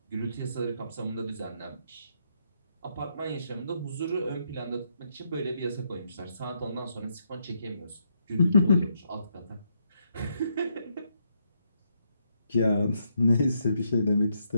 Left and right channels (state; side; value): inverted; both; correlation -0.77